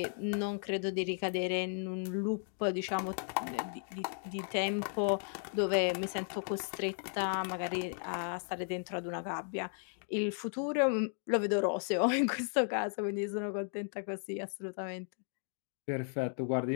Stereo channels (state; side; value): silent; right; 54 dB below the other